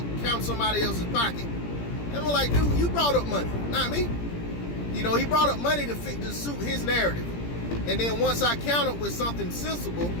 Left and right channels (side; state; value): right; late; 17 ms